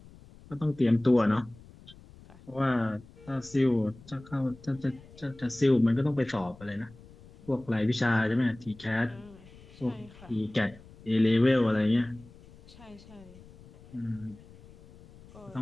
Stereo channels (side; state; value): left; noise; rumble, 22 dB below the sound